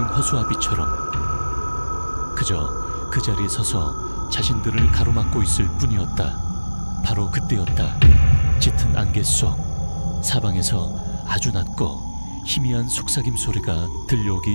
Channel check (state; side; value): inverted; both; correlation -1.00